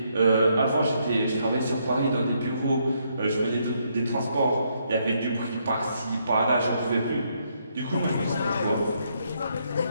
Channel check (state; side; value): inverted; both; correlation -0.74